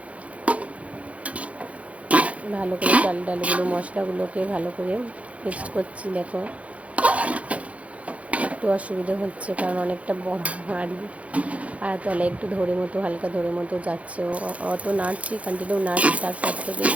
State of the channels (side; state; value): left; late; 0.065 ms